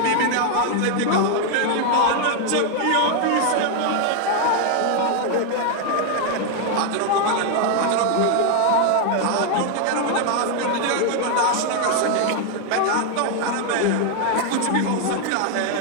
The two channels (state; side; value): different; both; correlation 0.00